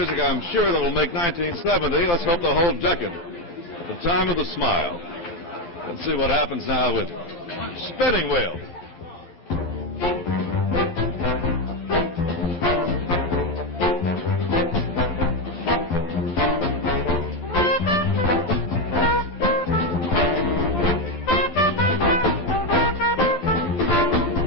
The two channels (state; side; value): late; right; 12 ms